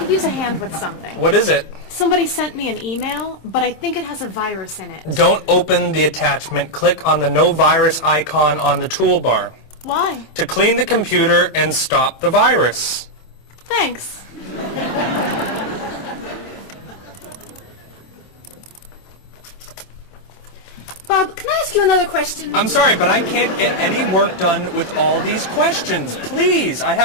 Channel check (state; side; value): late; right; 27 ms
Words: use a hand with something. What is it? Somebody sent me an email, but I think it has a virus in it. Don't open the attachment. Click on the no virus icon on the toolbar. Why? To clean the computer and stop the virus. Thanks. Bob, can I ask you another question? I'm sorry, but I can't get any work done with all these questions. Please, I